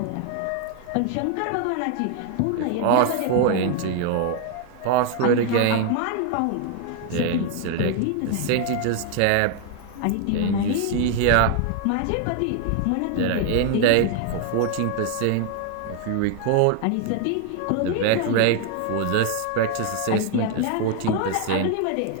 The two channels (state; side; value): different; both; correlation 0.00